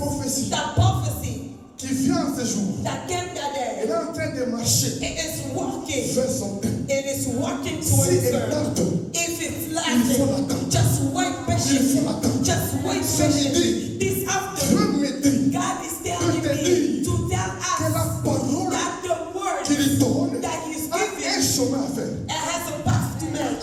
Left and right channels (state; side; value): identical; both; correlation 1.00